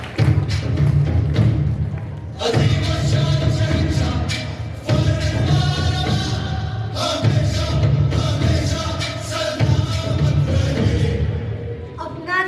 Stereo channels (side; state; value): both; identical; correlation 1.00